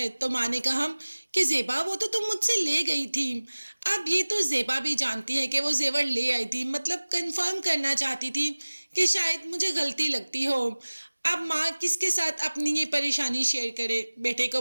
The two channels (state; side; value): inverted; both; correlation -1.00